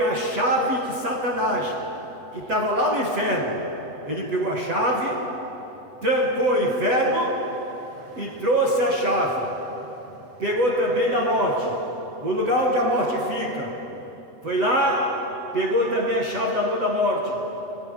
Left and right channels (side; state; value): left; late; 8.0 ms